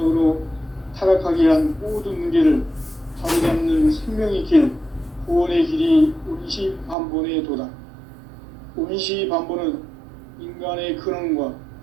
타락하게 한 모든 문제를 바로잡는 생명의 길, 구원의 길이 운시반본의 도다. 운시반본은 인간의 근원과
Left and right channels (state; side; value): drops out; left; at 7.0 s